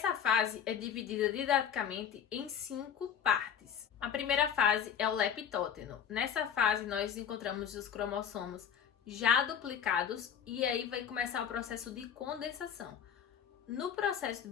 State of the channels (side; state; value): right; quieter; 8.3 dB